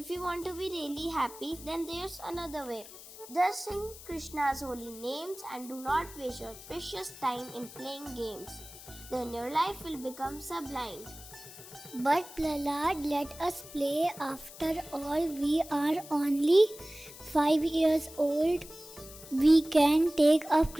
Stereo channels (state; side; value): noise; left; hiss, 16 dB below the sound